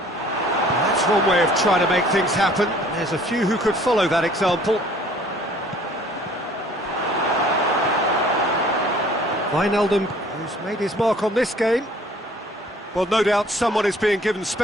That's one way of trying to make things happen. There's a few who could follow that example. Wijnaldum, who's made his mark on this game. Well, no doubt someone is being given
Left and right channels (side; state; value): both; normal; correlation 0.54